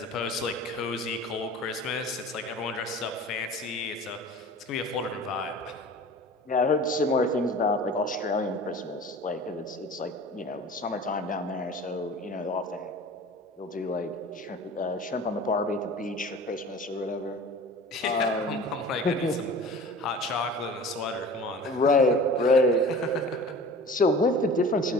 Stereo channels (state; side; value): normal; both; correlation 0.41